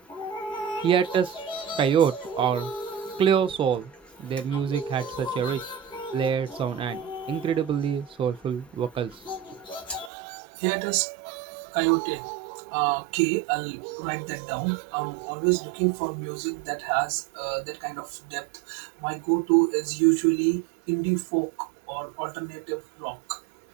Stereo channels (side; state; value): left; drops out; at 10.1 s